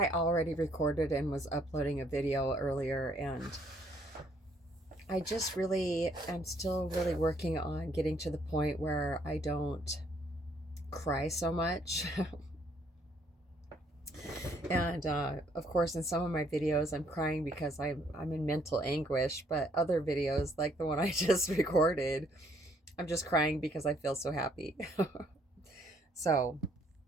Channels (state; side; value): normal; both; correlation 0.67